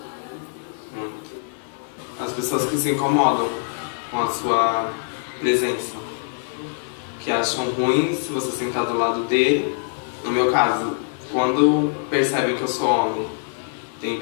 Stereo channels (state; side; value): silent; right; 63 dB below the other